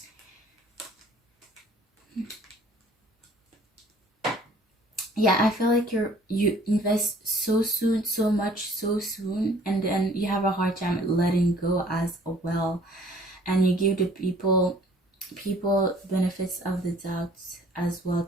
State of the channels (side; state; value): both; normal; correlation 0.55